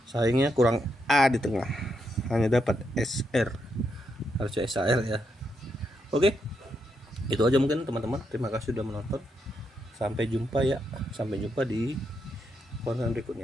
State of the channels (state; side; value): normal; both; correlation 0.80